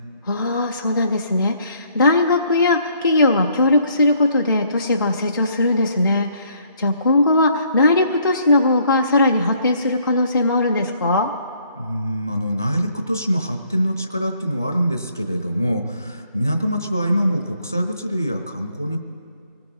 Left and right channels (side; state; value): both; inverted; correlation -0.65